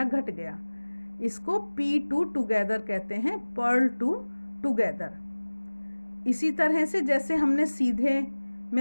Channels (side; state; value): both; inverted; correlation -1.00